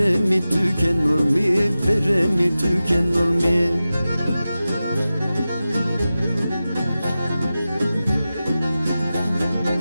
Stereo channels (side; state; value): both; inverted; correlation -0.94